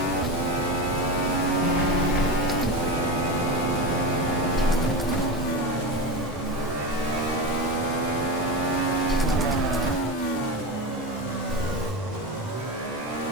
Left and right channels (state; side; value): normal; both; correlation 0.21